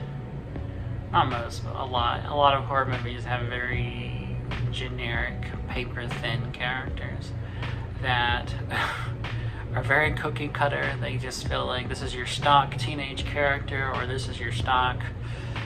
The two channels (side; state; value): both; identical; correlation 1.00